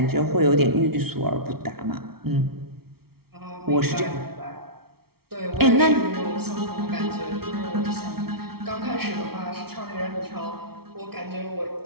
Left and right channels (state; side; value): late; left; 0.95 ms